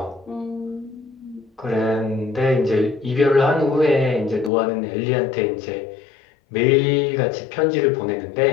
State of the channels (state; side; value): drops out; right; at 4.5 s